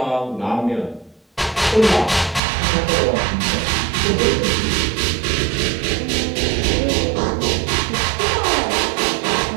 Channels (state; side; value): drops out; left; at 2.4 s